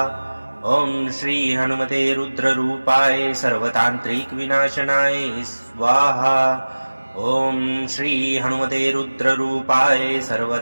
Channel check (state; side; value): inverted; both; correlation -1.00